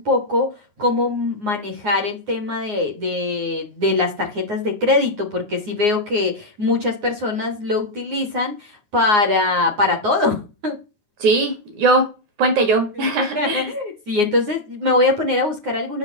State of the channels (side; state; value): left; late; 9.6 ms